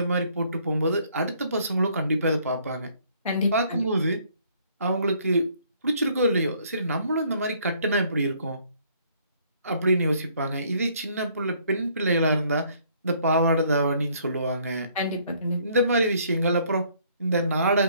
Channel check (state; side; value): inverted; both; correlation -0.63